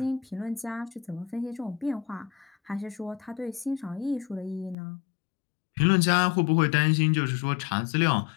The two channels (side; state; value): right; drops out; at 4.8 s